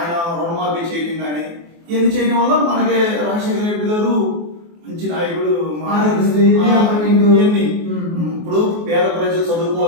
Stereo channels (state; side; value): late; left; 24 ms